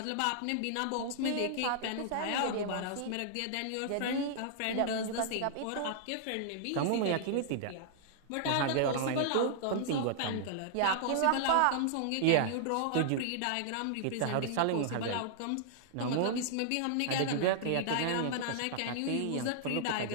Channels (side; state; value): both; different; correlation -0.01